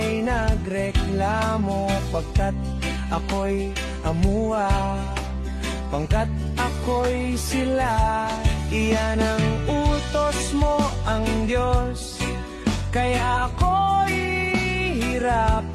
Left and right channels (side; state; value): both; identical; correlation 1.00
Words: nagreklamo. Pagkat ako'y amuwa, pangkat ako'y sila. Iyan ang utos mo, ang Diyos. Kaya ako'y